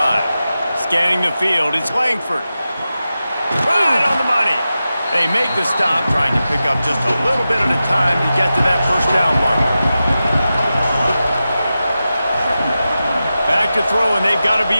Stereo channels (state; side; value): inverted; both; correlation -0.92